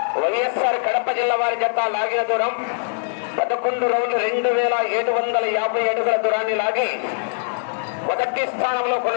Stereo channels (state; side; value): silent; right; 62 dB below the other